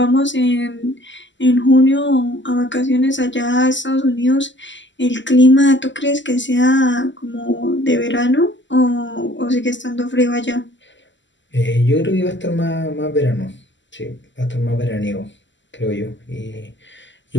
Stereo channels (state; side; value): late; right; 0.54 ms